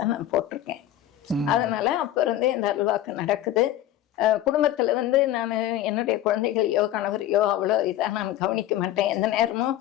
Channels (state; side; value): quieter; right; 12.7 dB